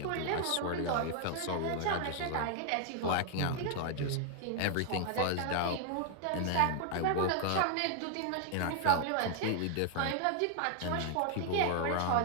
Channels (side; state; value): both; different; correlation 0.00